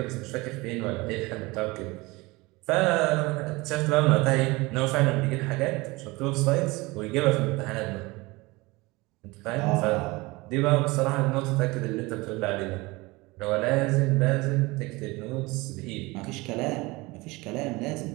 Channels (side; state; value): left; quieter; 23.0 dB